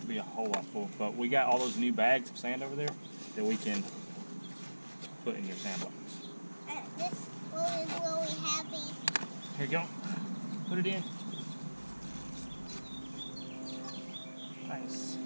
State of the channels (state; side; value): inverted; both; correlation -1.00